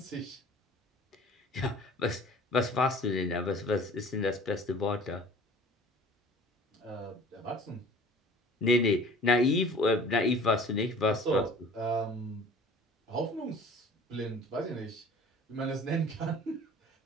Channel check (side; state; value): both; normal; correlation 0.47